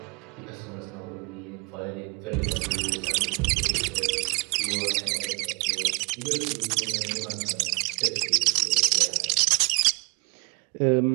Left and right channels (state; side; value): quieter; left; 29.1 dB